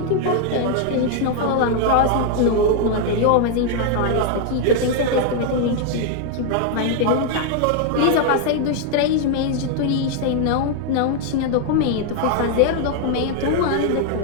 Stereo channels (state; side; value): different; both; correlation 0.00